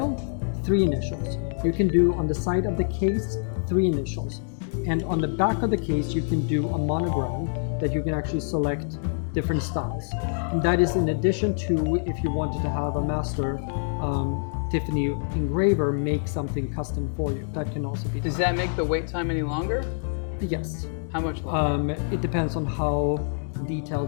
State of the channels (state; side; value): silent; right; digital silence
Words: 3 initials. You can do on the side of the case 3 initials, and on the back of the case you can do a monogram that you can actually select different styles. And that is in addition to if you wanted to have a master Tiffany engraver make something custom for you. That can also be done. Does that make the wait time any longer? Yes. How much longer? It depends on how